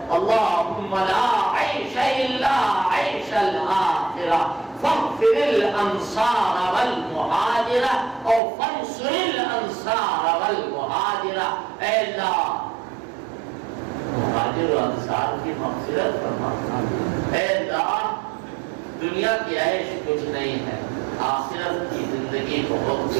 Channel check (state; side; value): drops out; left; at 8.4 s